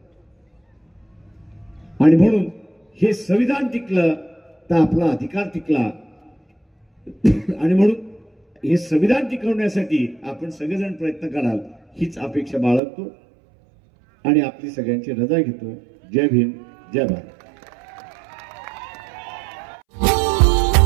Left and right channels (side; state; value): left; drops out; at 12.8 s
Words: आणि म्हणून हे संविधान टिकलं तर आपला अधिकार टिकला. आणि म्हणून हे संविधान टिकवण्यासाठी आपण सगळेजण प्रयत्न कराल हीच अपेक्षा बाळगतो आणि आपली सगळ्यांची रजा घेतो. जय भीम, जय Bharat.